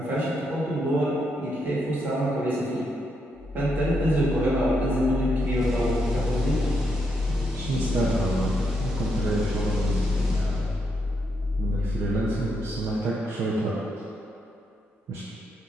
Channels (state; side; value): normal; both; correlation 0.80